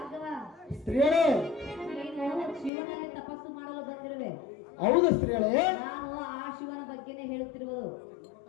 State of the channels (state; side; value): drops out; right; at 2.7 s